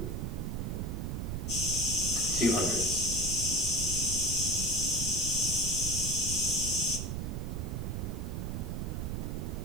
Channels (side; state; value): right; noise; rumble, 2 dB below the sound